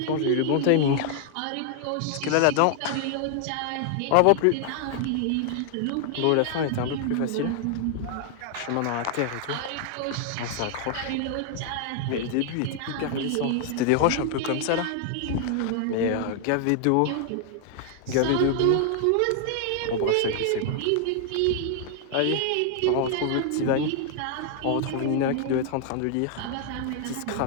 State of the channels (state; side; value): different; both; correlation 0.00